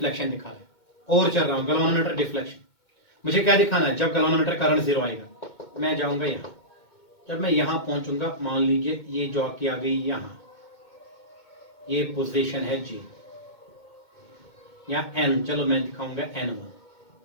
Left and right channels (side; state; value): right; late; 2.2 ms